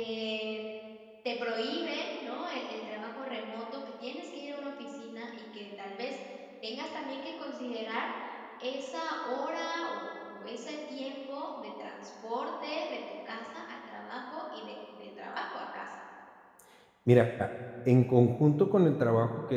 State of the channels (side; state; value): both; identical; correlation 1.00